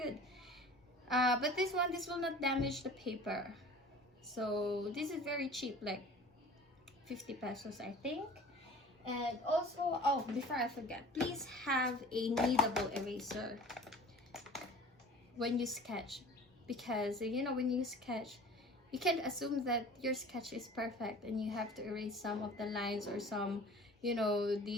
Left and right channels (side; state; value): both; normal; correlation 0.43